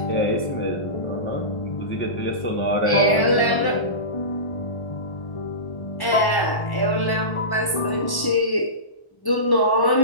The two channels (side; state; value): right; late; 1.1 ms